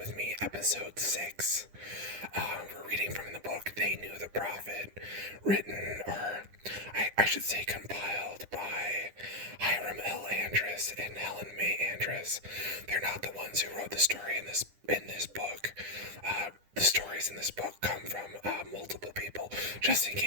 Me, Episode 6. We're reading from the book They Knew the Prophet, written, or I should say compiled by Hiram L. Andrus and Helen May Andrus. They're not the ones who wrote the story in this book. The stories in this book come from multiple people, just in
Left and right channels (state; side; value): late; left; 10 ms